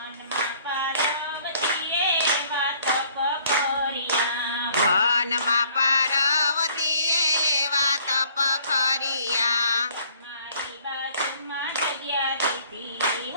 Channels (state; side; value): inverted; both; correlation -0.59